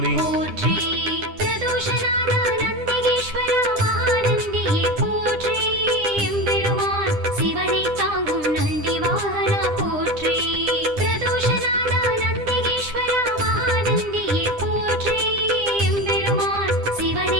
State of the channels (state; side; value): late; left; 9.9 ms